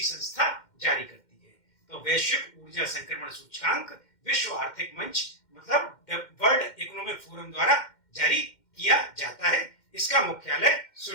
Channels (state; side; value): late; right; 2.1 ms